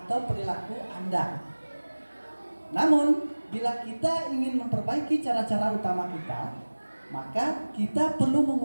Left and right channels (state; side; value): inverted; both; correlation -1.00